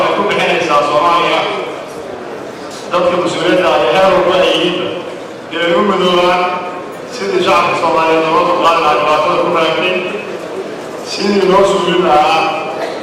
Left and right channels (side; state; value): both; identical; correlation 1.00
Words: ku bixinaysaa Soomaaliya dadka mas-uuliyadda ah ee heer walba ay yihiinba inay u midoobaan sidii shacabka Soomaaliyeed looga dulqaadi lahaa dhibaatada ku raagtay sidii loo suulin lahaa